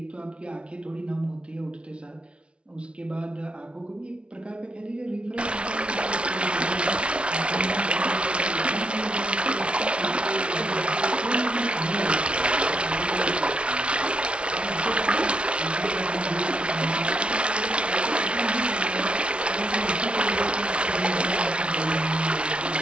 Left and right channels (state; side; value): late; left; 0.059 ms